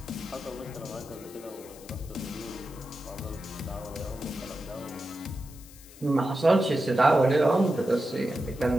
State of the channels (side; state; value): left; noise; hiss, 20 dB below the sound